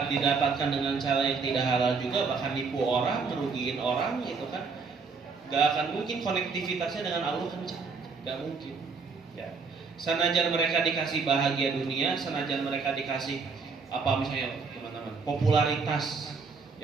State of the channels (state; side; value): quieter; left; 4.9 dB